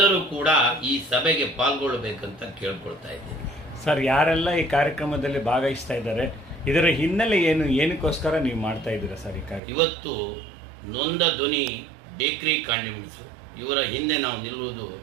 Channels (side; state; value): left; drops out; at 9.6 s